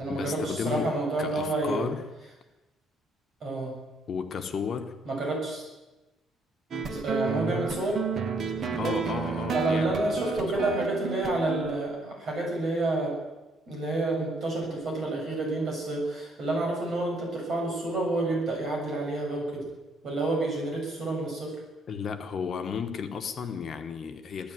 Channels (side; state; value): both; normal; correlation 0.67